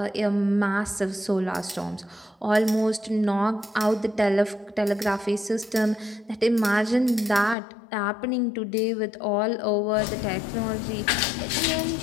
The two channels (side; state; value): right; drops out; at 7.6 s